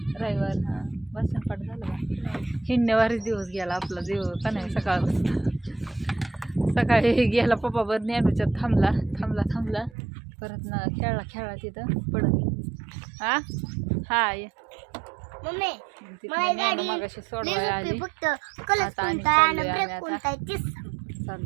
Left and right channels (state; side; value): drops out; left; at 9.9 s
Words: रविवार हा भाषण पाठ झालं का? हिंडण्यावारीच दिवस गेला आपला जीव का नाही. सकाळी गेला पप्पा बर ज्ञानूच्यात थांबला परत ना खेळला तिथं पडत. हा हाय मम्मी ज्ञानू मगाशी सोडवायला आली. आता आणि चाललोय आम्ही आता.